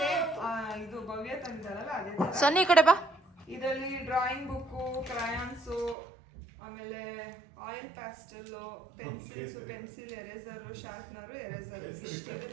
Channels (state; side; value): drops out; left; at 6.0 s